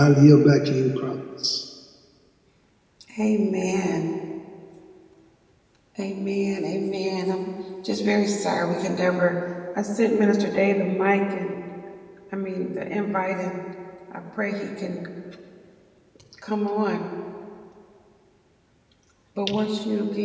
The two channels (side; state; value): both; identical; correlation 1.00